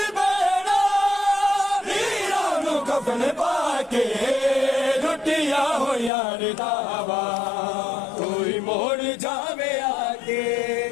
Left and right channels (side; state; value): right; drops out; at 6.1 s